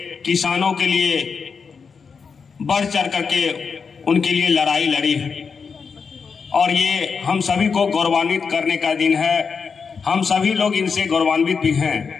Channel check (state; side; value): quieter; right; 5.6 dB